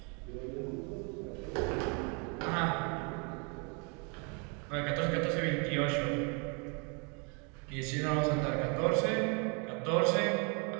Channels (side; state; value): left; quieter; 34.4 dB